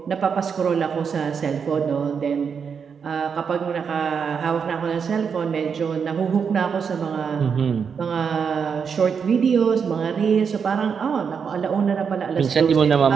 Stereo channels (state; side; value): quieter; left; 6.5 dB